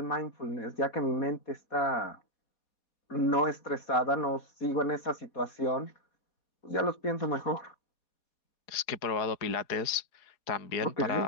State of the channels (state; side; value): late; right; 4.7 ms